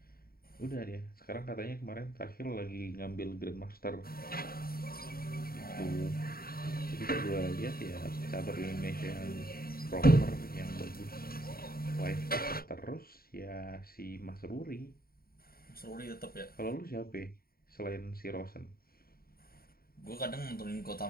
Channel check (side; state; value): right; late; 0.43 ms